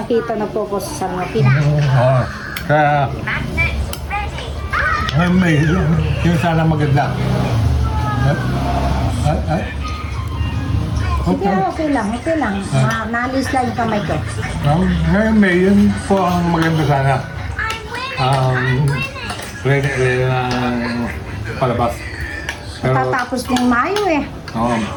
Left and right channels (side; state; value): both; identical; correlation 1.00